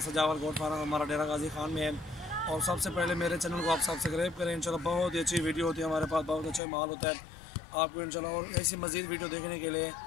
सजावल गोट फार्म हमारा डेरा गाजी खान में है। और सबसे पहले मेरे चैनल को आप सब्सक्राइब करें। इंशाल्लाह बहुत ही अच्छी वीडियो होती है हमारे पास, बहुत अच्छा माल होता है आपको इंशाल्लाह। और ऐसी मज़ीद वीडियो देखने के लिए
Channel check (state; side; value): drops out; right; at 6.6 s